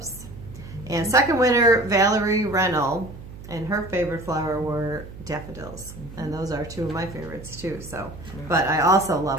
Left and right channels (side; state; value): right; noise; hum, 15 dB below the sound